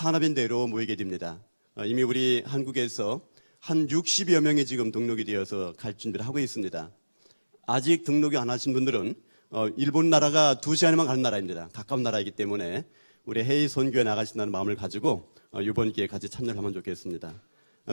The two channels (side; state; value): both; inverted; correlation -1.00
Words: 대회로 모이게 됩니다. 이미 우리 한국에서 한 60여 명이 지금 등록이 되어서 갈 준비를 하고 있습니다. 아직 등록이 안 하신 분들은 일본 나라가 2시간이면 가는 나라입니다. 가까운 나라이기 때문에 우리 해외 선교에 나가신다는 마음을 가지고 이번 기회에 같이 참여를 하면 좋겠습니다.